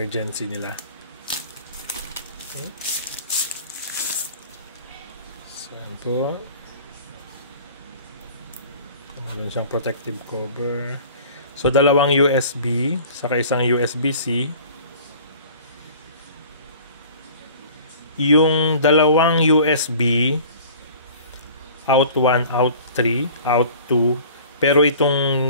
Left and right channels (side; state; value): both; inverted; correlation -0.45